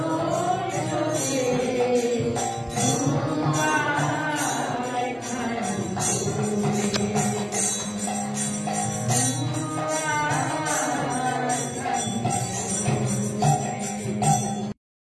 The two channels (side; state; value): both; identical; correlation 1.00